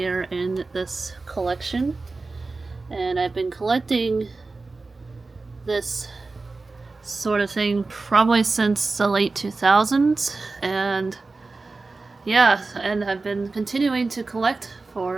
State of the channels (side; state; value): left; quieter; 3.7 dB